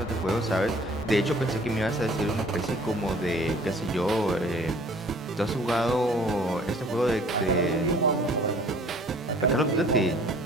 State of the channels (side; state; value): both; normal; correlation 0.53